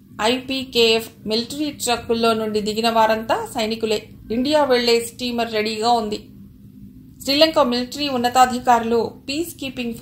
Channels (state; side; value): identical; both; correlation 1.00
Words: ఐపీకేఎఫ్ మిలిటరీ ట్రక్కుల్లో నుండి దిగిన వారంతా సైనికులే. ఇండియా వెళ్లే స్టీమర్ రెడీగా ఉంది. శ్రీలంక మిలిటరీ ఉన్నతాధికారులు పీస్ కీపింగ్